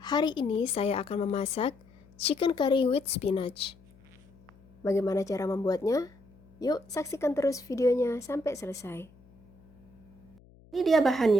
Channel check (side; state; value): left; noise; hum, 27 dB below the sound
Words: ini saya akan memasak chicken curry with spinach. Bagaimana cara membuatnya? Yuk saksikan terus videonya sampai selesai. Ini dia